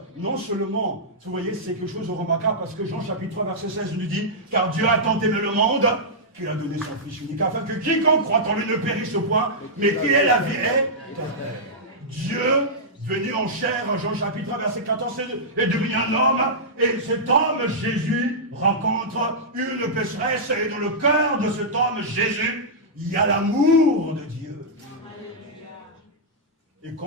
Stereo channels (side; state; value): both; normal; correlation -0.11